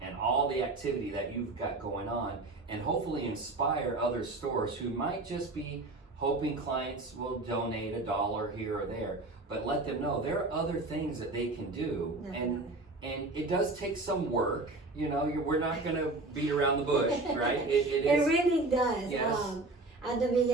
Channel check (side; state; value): left; quieter; 3.1 dB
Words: and all the activity that you've got going on and hopefully inspire other stores who might just be hoping clients will donate $1 here or there, but let them know there are other things that they can do. Definitely. And it does take some work, you know, we're not going to beat around the bush, right? It is. really does. Yes. At the